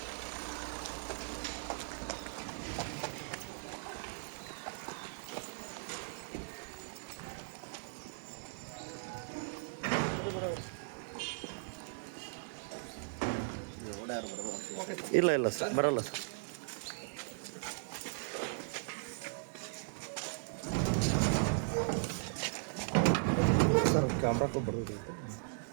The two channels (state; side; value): silent; left; 53 dB below the other